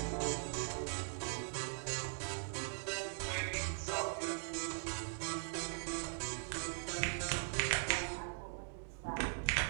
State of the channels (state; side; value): silent; left; 50 dB below the other